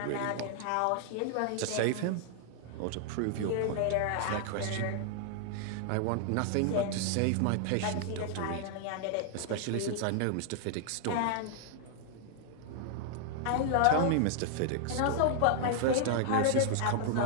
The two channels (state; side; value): different; both; correlation 0.00